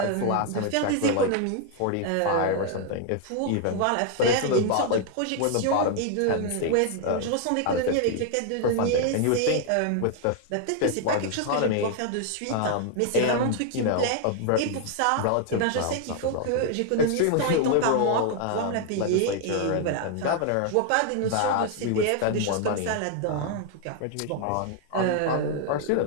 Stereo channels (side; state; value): both; different; correlation 0.00